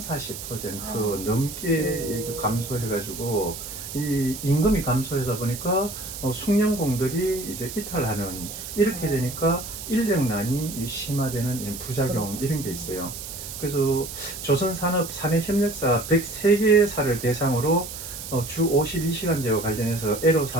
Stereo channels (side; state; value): right; noise; hiss, 10 dB below the sound